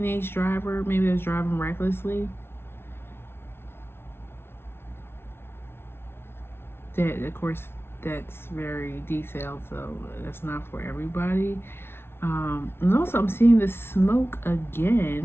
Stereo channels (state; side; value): late; right; 0.12 ms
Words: driver? Maybe it was driving recklessly. That, of course, that's very detailed, so that's not for everybody. And also, I'm seeing the smoke